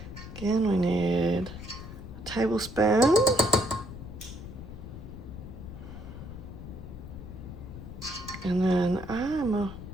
again, we need a tablespoon. And then I'm a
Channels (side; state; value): left; noise; rumble, 12 dB below the sound